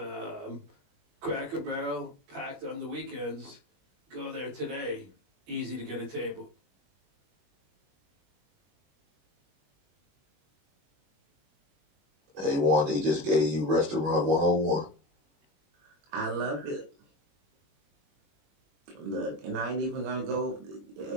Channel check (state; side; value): late; left; 21 ms